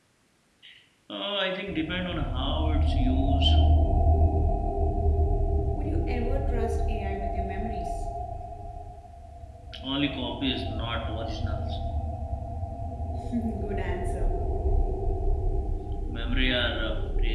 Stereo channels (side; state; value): both; identical; correlation 1.00